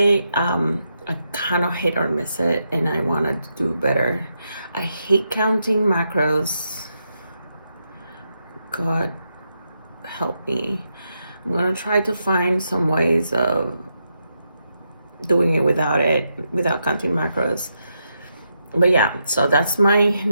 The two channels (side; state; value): both; inverted; correlation -0.83